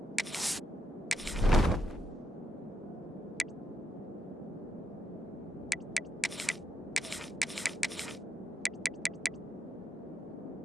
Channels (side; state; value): both; normal; correlation 0.81